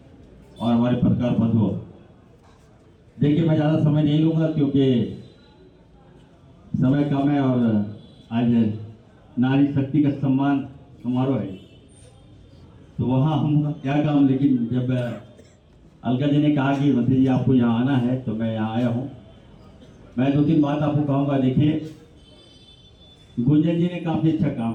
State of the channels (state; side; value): identical; both; correlation 1.00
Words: और हमारे पत्रकार बंधुओं। देखिए, मैं ज़्यादा समय नहीं लूँगा क्योंकि समय कम है और आज नारी शक्ति का सम्मान समारोह है, तो वहाँ हम क्या काम। लेकिन जब अलका जी ने कहा कि मंत्री जी आपको यहाँ आना है तो मैं यहाँ आया हूँ। मैं 2-3 बात आपको कहूँगा। देखिए, गुंजन जी ने काफ़ी अच्छा काम